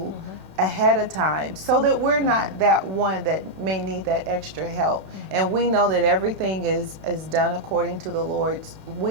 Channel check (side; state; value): left; late; 32 ms